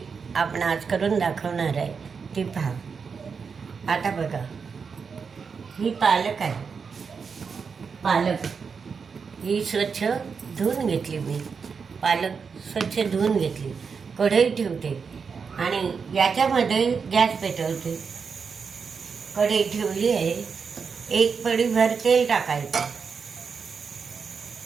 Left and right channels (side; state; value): left; quieter; 5.7 dB